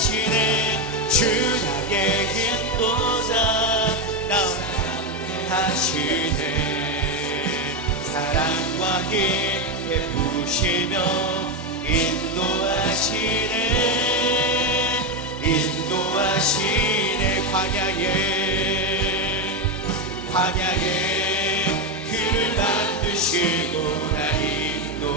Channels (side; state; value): both; normal; correlation 0.10